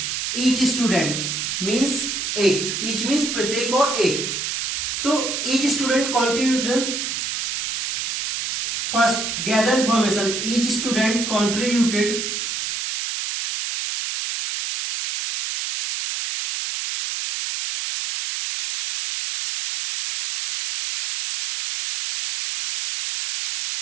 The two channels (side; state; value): right; noise; hiss, 2 dB below the sound